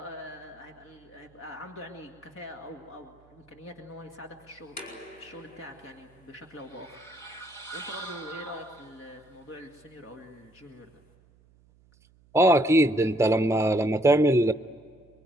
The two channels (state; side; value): noise; right; hum, 30 dB below the sound